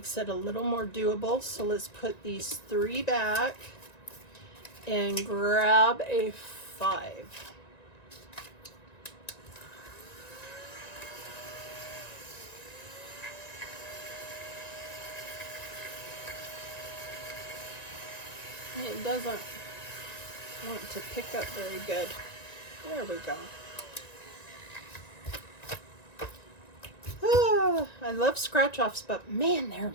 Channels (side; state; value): right; late; 1.9 ms